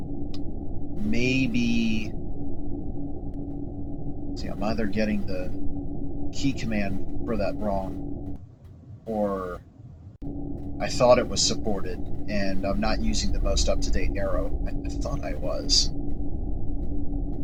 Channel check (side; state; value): both; identical; correlation 1.00